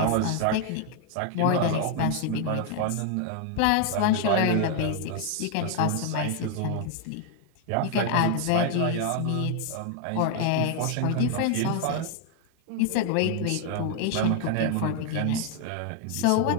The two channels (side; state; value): both; different; correlation 0.00